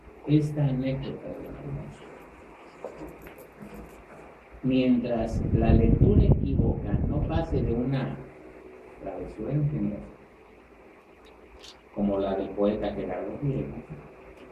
esta anécdota de Alonso. Mientras la lectura equívoca no pase de una travesura ingeniosa, como la del poeta Gerardo Diego,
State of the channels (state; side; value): identical; both; correlation 1.00